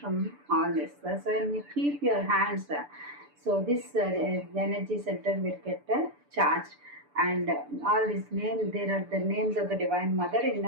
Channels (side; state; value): left; late; 6.9 ms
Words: all this. So when you keep your hands, so this energy center will get charged. And all these names, there are the names of the Divine Mother